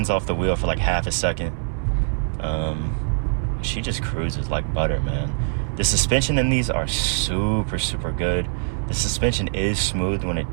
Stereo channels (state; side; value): silent; left; 62 dB below the other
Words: off the wheel for like half a second. She just cruises like butter, man. The suspension in these are super, super good. The suspension is smooth when